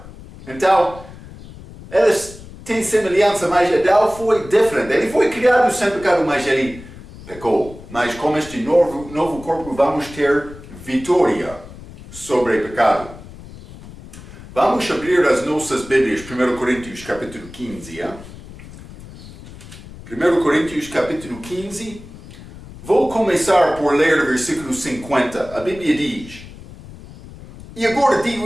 Então, eles têm semelhança, mas Adão foi diferente. Ele foi criado sem pecado, mas ele pecou. Mas com este novo corpo vamos ter vitória sobre o pecado. Vamos abrir as nossas Bíblias, 1 Coríntios capítulo 15. 1 Coríntios capítulo 15. Vou começar por ler o versículo 50. A Bíblia diz: E agora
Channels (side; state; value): left; noise; rumble, 17 dB below the sound